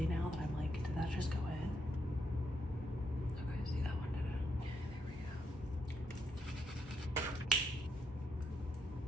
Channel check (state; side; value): normal; both; correlation 0.78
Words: now that I'm like, did that just go in? Okay, see that one, did it? There we go.